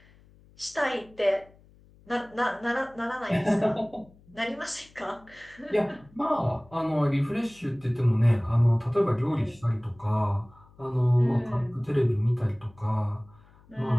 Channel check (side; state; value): left; noise; hum, 27 dB below the sound